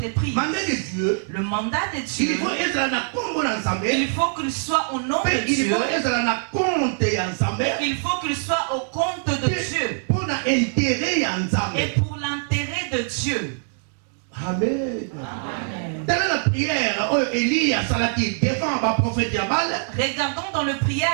Le mandat de Dieu, il faut qu'il soit au nom de Dieu. Il faut qu'il soit au compte de Dieu et pour l'intérêt de Dieu. Amen. Telle est la prière Élie a salati devant le prophète Baal. Regardons dans la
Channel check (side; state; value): left; silent; 63 dB below the other